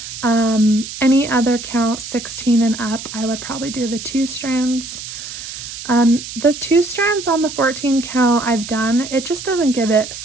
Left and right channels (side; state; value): right; noise; hiss, 10 dB below the sound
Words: Any other count, 16 and up, I would probably do the 2 strands. The 2 strands on the 14 count I've done, it just doesn't give it